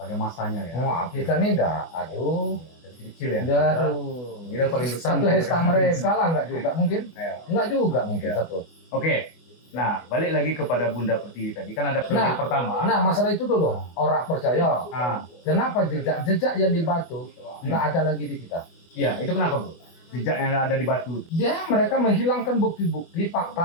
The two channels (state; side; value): late; right; 24 ms